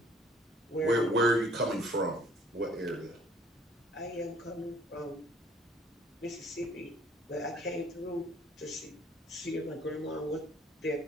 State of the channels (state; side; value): normal; both; correlation 0.57